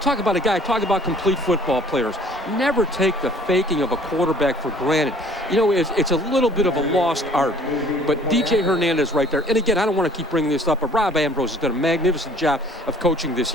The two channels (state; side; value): normal; both; correlation 0.53